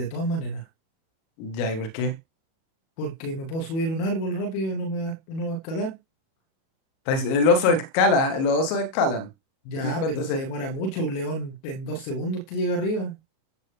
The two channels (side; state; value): right; late; 37 ms